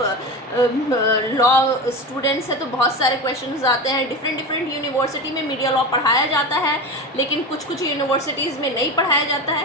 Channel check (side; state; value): both; normal; correlation 0.25